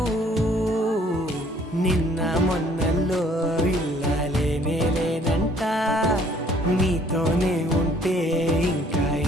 నిన్న మొన్నల్లో ఇల్లాలేనే లేనంట నీతోనే ఉంటే ఇంకా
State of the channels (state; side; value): normal; both; correlation 0.60